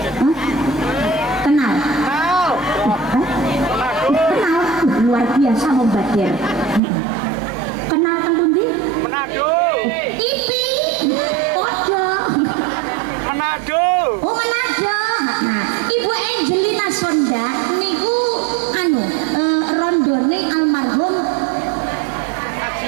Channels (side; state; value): left; drops out; at 6.8 s